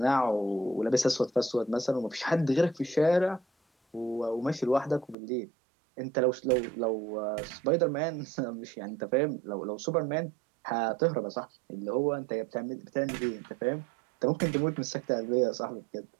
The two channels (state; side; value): drops out; left; at 5.2 s